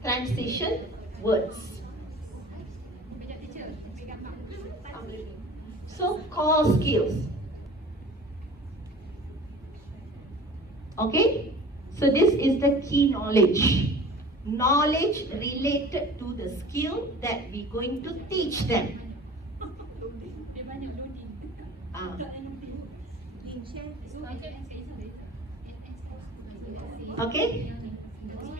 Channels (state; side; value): normal; both; correlation 0.43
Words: transition words. So, core skills. Okay? So, this is the key knowledge. Knowledge related to the skill that we're going to teach them. Okay?